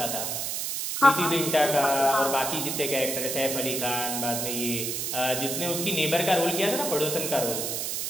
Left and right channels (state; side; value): noise; right; hiss, 2 dB below the sound